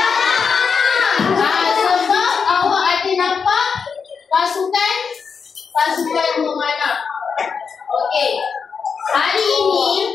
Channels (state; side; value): quieter; right; 5.9 dB